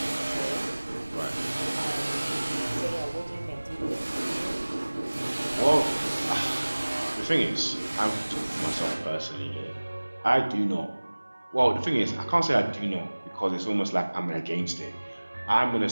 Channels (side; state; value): both; inverted; correlation -1.00